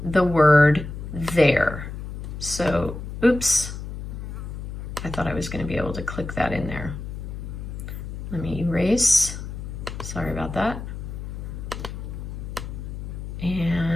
the word their. So, oops, I thought I was going to be able to click that in there. Let me erase. Sorry about that.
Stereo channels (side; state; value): left; noise; hum, 8 dB below the sound